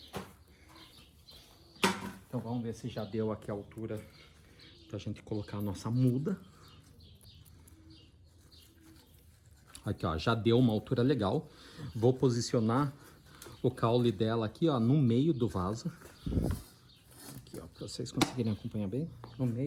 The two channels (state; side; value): identical; both; correlation 1.00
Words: vamos ver se já deu aqui a altura pra gente colocar a nossa muda. Aqui, ó, já deu uma altura legal. Vou posicionar o caule dela aqui, ó, no meio do vaso. Aqui, ó, pra vocês conseguirem acompanhar bem, no